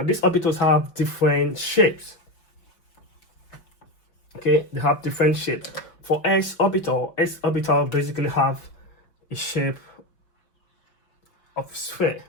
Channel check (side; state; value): right; late; 5.5 ms